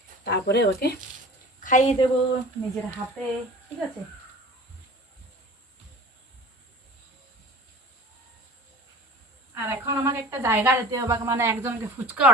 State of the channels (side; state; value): both; normal; correlation 0.40